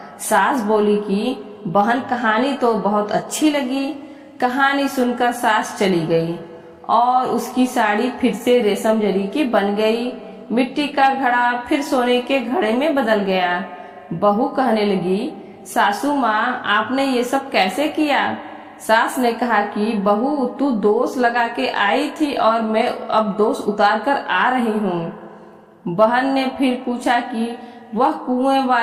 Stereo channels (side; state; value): both; identical; correlation 1.00